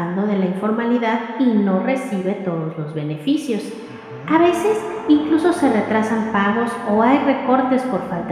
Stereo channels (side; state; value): both; identical; correlation 1.00